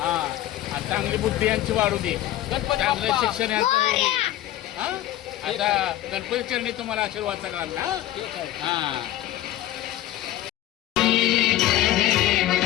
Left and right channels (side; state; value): right; quieter; 14.1 dB